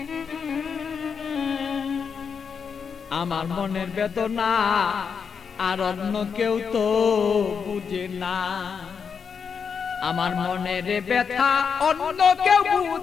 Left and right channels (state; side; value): quieter; right; 6.3 dB